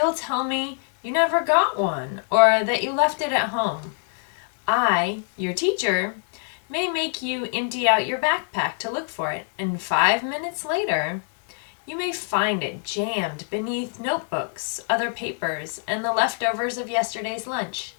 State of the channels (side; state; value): right; silent; 62 dB below the other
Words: tell me you never got one or that you left it at home. I, your teacher, may make you empty out your backpack to look for it, and 5 minutes later, you may find it jammed beneath notebooks, other papers, and the leftovers of yesterday's lunch.